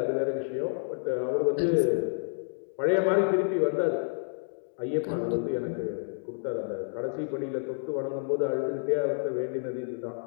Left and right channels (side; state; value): right; silent; digital silence